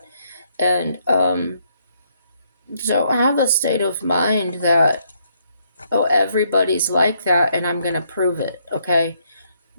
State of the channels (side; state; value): both; inverted; correlation -0.73